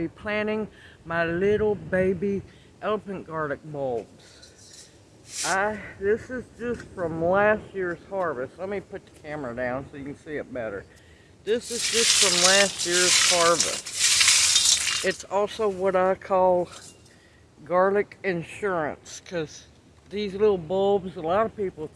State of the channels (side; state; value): both; identical; correlation 1.00